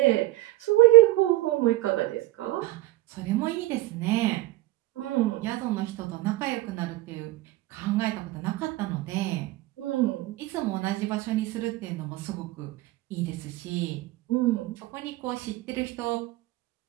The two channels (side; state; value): left; quieter; 17.5 dB